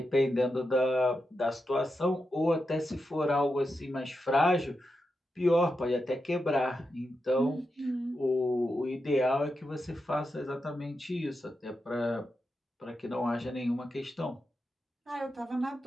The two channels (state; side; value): normal; both; correlation 0.88